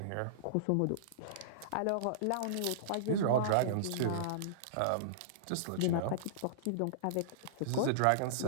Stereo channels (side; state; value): both; different; correlation -0.02